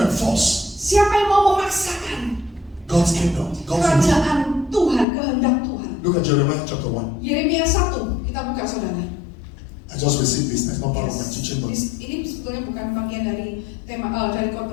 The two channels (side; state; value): right; drops out; at 5.1 s